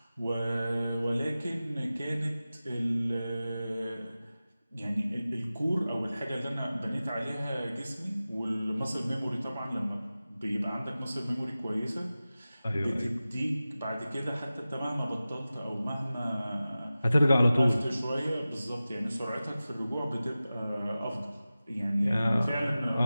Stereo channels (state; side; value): inverted; both; correlation -0.96